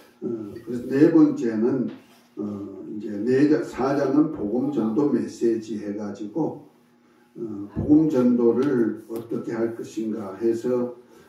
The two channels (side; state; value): both; identical; correlation 1.00